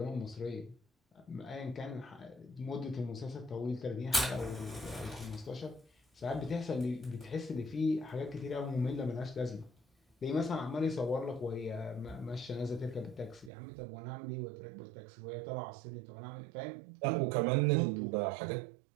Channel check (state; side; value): drops out; left; at 13.5 s